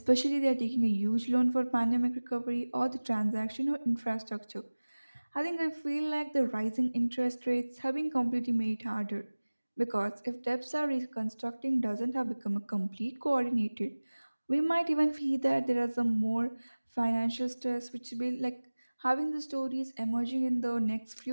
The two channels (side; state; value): both; inverted; correlation -1.00